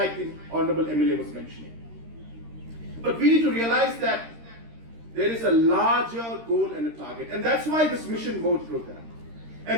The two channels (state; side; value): late; left; 13 ms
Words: the Honorable MLA was mentioning. But we need to realize that there is a larger goal and a target. And that's why this mission mode program.